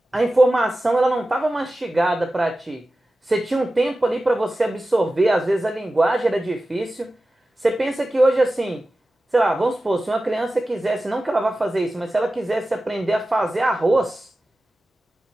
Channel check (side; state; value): both; normal; correlation 0.95